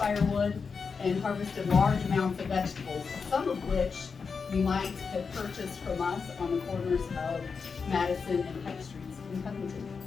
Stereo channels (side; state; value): right; quieter; 5.3 dB